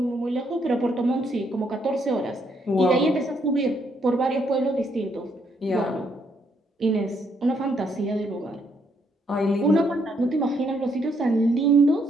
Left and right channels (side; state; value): both; normal; correlation 0.73